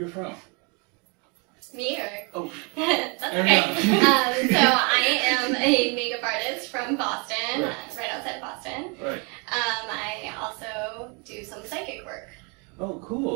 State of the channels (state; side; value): quieter; left; 32.7 dB